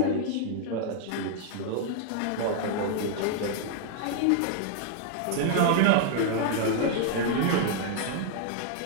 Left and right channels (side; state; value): both; different; correlation -0.01